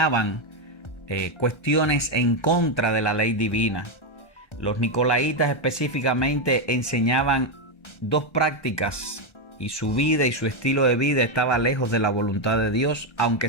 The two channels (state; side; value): late; right; 1.3 ms